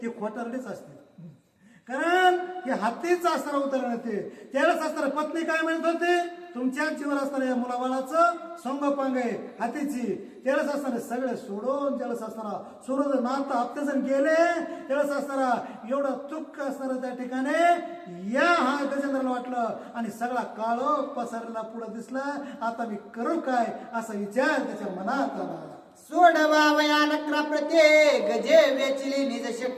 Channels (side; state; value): both; identical; correlation 1.00